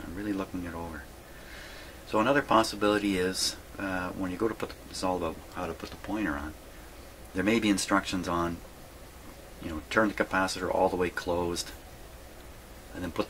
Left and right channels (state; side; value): identical; both; correlation 1.00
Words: I'm really looking it over. So another possibility is when you go to put this is all about how to put the pointer on. There may be instructions on, turn the capacitor all the way closed, and then put